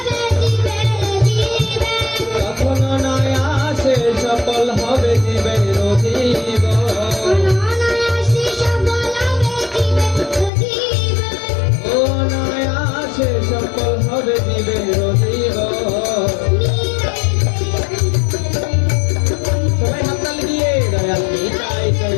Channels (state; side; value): drops out; right; at 10.5 s